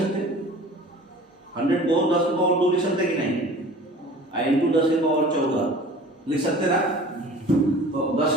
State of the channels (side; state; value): both; normal; correlation 0.43